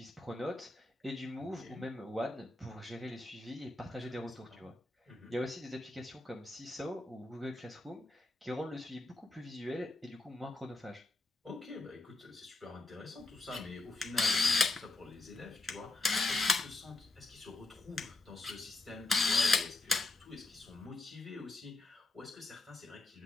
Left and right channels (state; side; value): quieter; right; 3.0 dB